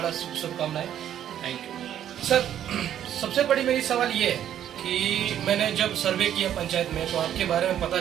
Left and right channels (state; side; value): quieter; left; 10.5 dB